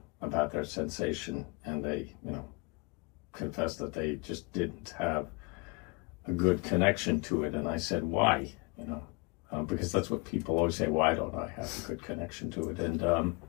about their sensation, and they, confessed that they just didn't have a good connection to it. And I said, why? Because that's what people always say, why don't I have a good connection to it? And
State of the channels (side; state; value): right; quieter; 28.8 dB